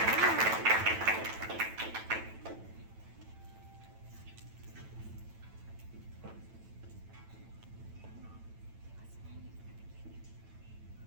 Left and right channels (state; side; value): late; left; 9.0 ms